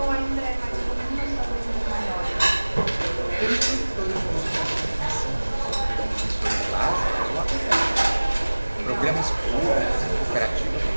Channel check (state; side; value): inverted; both; correlation -1.00